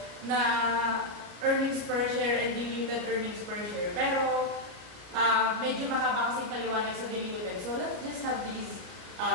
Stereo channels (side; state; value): left; late; 33 ms